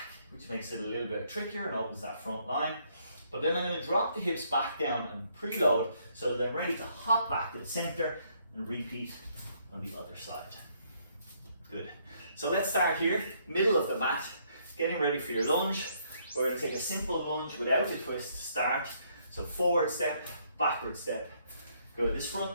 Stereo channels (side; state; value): both; inverted; correlation -0.69